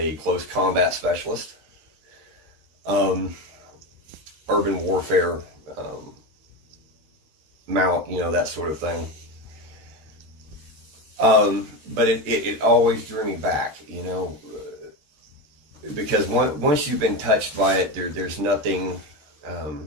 close combat specialist, urban warfare, mount, that sort of thing. But it always drew me back, because once you've been touched by it, there's nothing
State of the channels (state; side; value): late; left; 13 ms